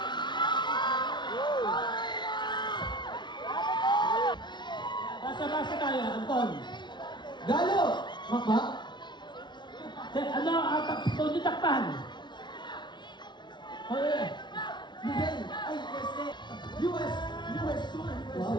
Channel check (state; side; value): late; right; 0.22 ms